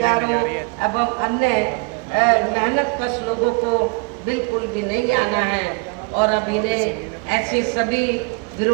एवं अन्य मेहनतकश लोगों को बिल्कुल भी नहीं आना है। और अब इन्हें ऐसी सभी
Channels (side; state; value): left; quieter; 31.4 dB